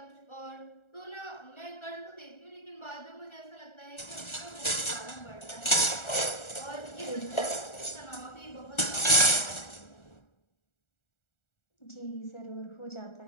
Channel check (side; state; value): right; late; 1.4 ms